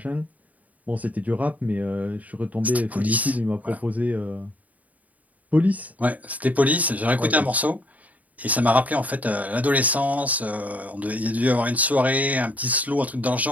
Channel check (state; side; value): late; left; 0.073 ms